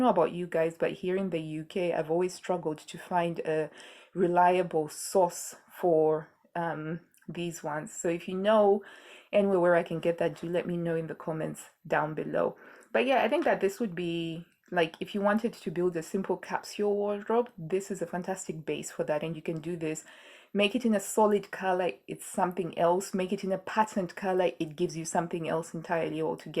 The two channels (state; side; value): identical; both; correlation 1.00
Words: about you guys, but here in the UK, I've always struggled to find a reliable source for these ones. So if you know anywhere where I can get that, do let me know in the comments down below. But yeah, I think that this would be like if you wanted to build a simple capsule wardrobe, this is a fantastic base for that. And you can do this. Make it in a solid color, it's something else. Make it in a patterned color, it gives you something else entirely